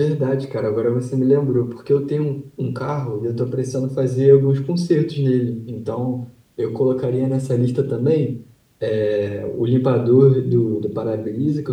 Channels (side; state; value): both; identical; correlation 1.00